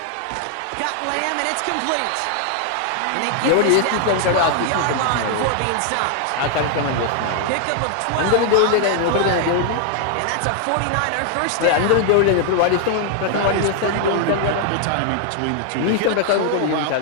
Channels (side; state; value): both; different; correlation 0.00